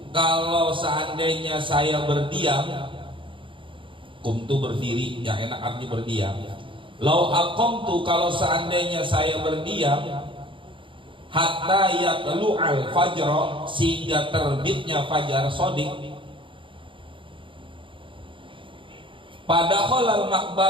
kalau seandainya saya berdiam, kumtu berdiri, yang enak artinya berdiam. Lau aqamtu, kalau seandainya saya berdiam, hatta yatlu'al fajr, sehingga terbitnya fajar shadiq, pada khalal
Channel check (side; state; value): left; late; 0.25 ms